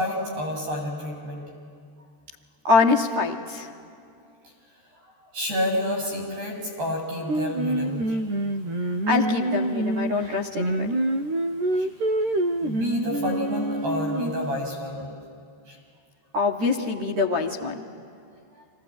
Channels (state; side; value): late; left; 13 ms